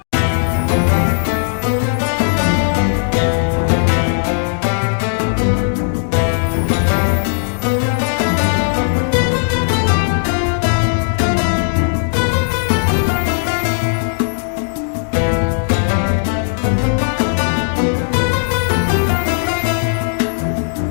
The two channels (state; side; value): silent; right; 65 dB below the other